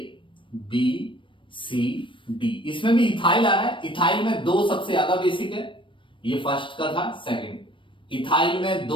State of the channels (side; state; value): right; late; 0.25 ms